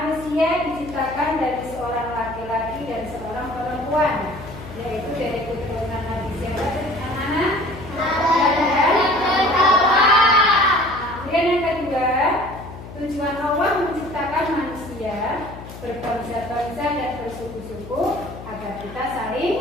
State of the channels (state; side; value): noise; left; hum, 14 dB below the sound